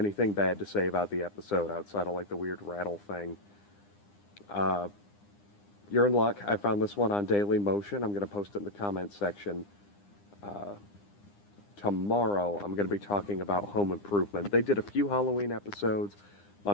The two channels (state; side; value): late; right; 9.9 ms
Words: bad to say about the episode outside of like the weird rattle thing. You're in luck. I found this one on Daily Motion. I'm going to post it in the comments section. Tomorrow I'm going to be talking about Home Improvement. They did a few Halloween episodes. My